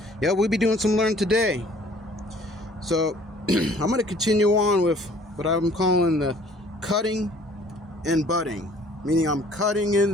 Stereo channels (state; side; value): normal; both; correlation 0.55